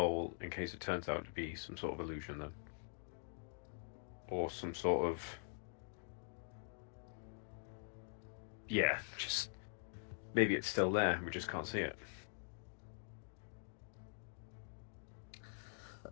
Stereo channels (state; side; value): silent; right; digital silence